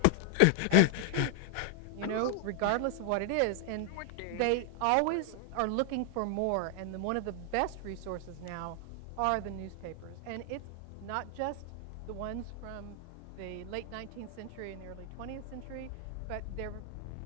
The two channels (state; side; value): different; both; correlation 0.00